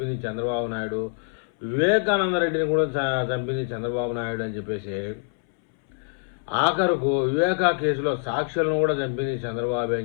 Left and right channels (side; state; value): right; silent; 62 dB below the other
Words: చంద్రబాబు నాయుడు, వివేకానంద రెడ్డిని కూడా చంపింది చంద్రబాబు నాయుడు అని చెప్పేసి, ఆఖరుకు వివేకా కేసులో సాక్షులను కూడా చంపింది చంద్రబాబు